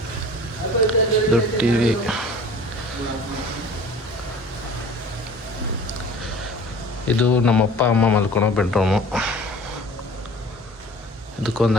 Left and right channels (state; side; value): normal; both; correlation 0.44